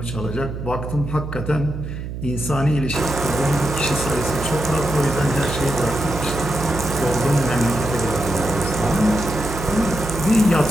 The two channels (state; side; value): noise; right; hum, 7 dB below the sound